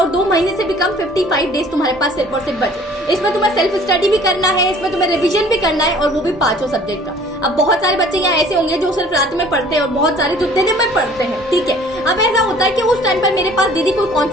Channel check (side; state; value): both; normal; correlation 0.52